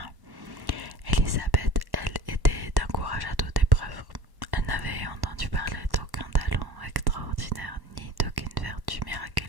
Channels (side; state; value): left; late; 1.1 ms